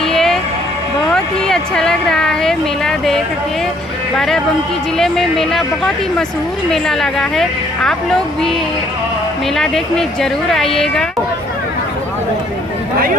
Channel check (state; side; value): normal; both; correlation 0.64